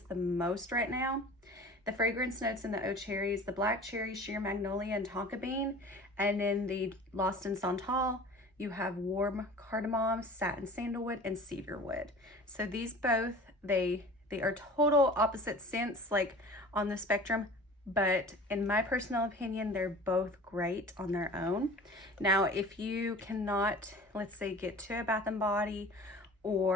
the most right now. The fragrance notes in the Eau Cherry is the black cherry, sheer magnolia, and tonka bean. And in the Lost in Santal, you have warm cardamom, satin sandalwood, and cedarwood. So these both, they are total opposite scents, like on the spectrum, but in my personal opinion, they're both great on their own. Now, if you cannot, let's say, get to a Bath and Body,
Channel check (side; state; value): both; normal; correlation 0.42